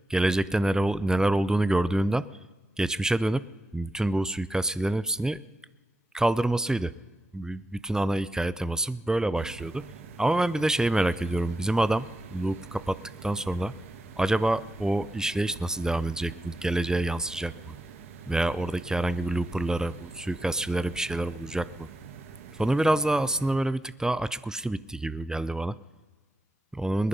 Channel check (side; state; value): both; normal; correlation 0.90